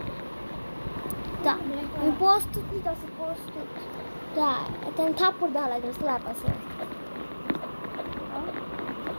তা আমি প্রস্তুত নিতেছি প্রস্তুত তা এটা আমি থাপ্পড় দেওয়া লাগবে স্ল্যাপ আছে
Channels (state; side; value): inverted; both; correlation -1.00